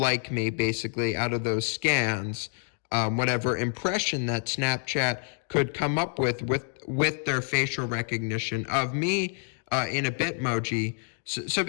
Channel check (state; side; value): silent; right; 59 dB below the other